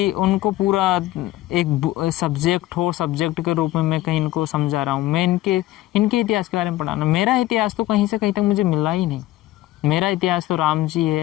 उनको पूरा एक सब्जेक्ट हो, सब्जेक्ट के रूप में मैं कहीं इनको समझा रहा हूँ। मैं इनके इतिहास के बारे में पढ़ाना, मेरा इतिहास तो कहीं से कहीं तक मुझे मिला ही नहीं। मेरा इतिहास तो राम जी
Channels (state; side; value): quieter; right; 15.9 dB